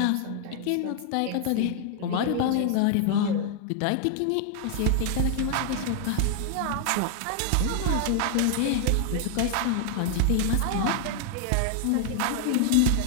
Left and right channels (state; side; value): different; both; correlation 0.00